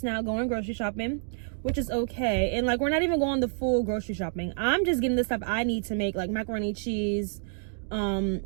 now going grocery shopping, which is okay. And like, we're not even going the full grocery shopping. I'm just getting the stuff I need to make, like macaroni, cheese,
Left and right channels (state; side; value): silent; left; digital silence